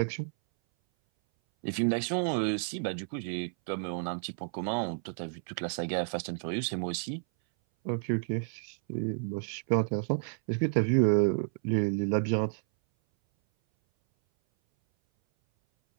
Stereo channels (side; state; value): left; silent; 57 dB below the other